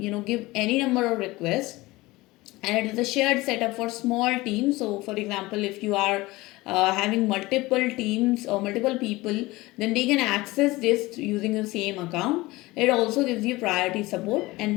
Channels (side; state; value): right; quieter; 20.4 dB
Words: give any number of requests, and it is a shared setup for small teams. So for example, if you are having multiple teams or multiple people, then they can access this using the same account. It also gives you priority support,